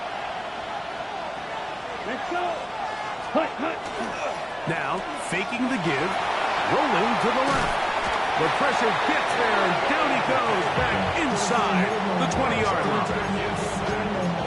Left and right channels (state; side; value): identical; both; correlation 1.00